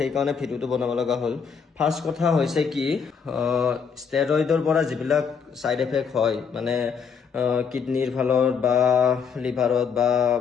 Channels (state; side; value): quieter; right; 6.3 dB